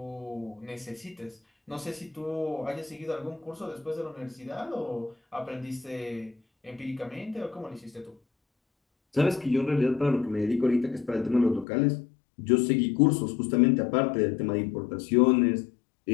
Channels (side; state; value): right; drops out; at 11.7 s